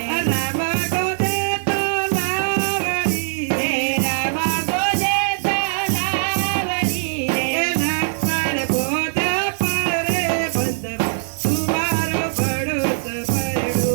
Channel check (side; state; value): left; silent; 59 dB below the other